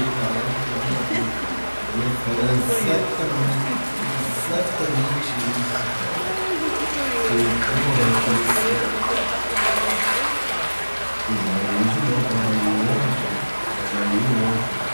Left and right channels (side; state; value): both; inverted; correlation -1.00